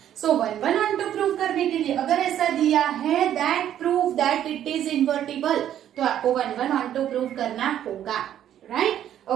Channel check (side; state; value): left; quieter; 10.8 dB